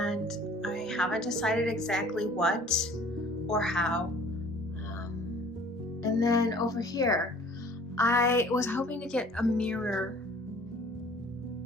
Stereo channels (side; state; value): both; normal; correlation 0.51